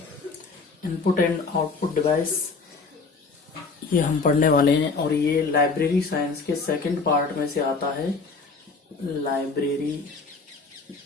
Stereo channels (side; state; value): right; quieter; 4.3 dB